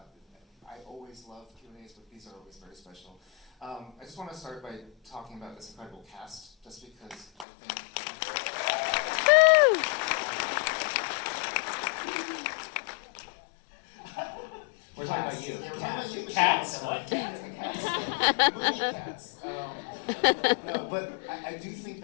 I always love Q&As, but these are always very special. I just want to start by talking about this incredible cast, just because I think... We're talking about you. Yeah, we're talking about you, Cats? What? Cats. Movie cats. No, but I do think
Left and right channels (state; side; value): drops out; right; at 7.5 s